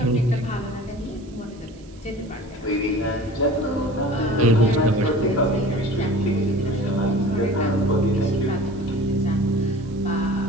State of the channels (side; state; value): right; noise; hiss, 28 dB below the sound